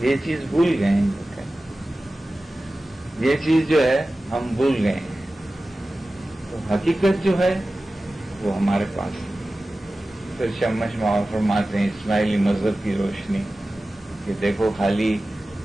چیز بھول گئے ہیں، یہ چیز جو ہے ہم بھول گئے ہیں. تو حقیقت جو ہے وہ ہمارے پاس ہے. پھر شمش ماؤ فرماتے ہیں اسماعیلی مذہب کی روشنی کہ دیکھو خالی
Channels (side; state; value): both; normal; correlation 0.96